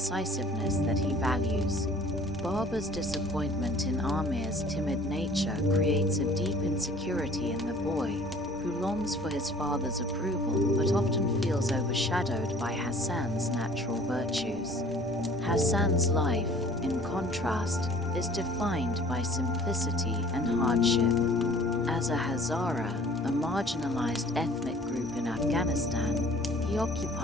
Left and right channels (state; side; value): normal; both; correlation 0.51